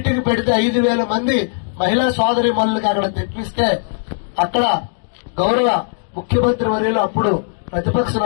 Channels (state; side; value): silent; right; digital silence